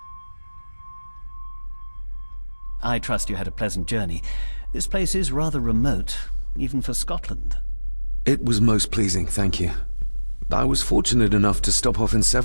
I trust you had a pleasant journey. This place is rather remote, even for Scotland. It was most pleasing, thank you. I was fortunate enough to stop off in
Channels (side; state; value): both; inverted; correlation -1.00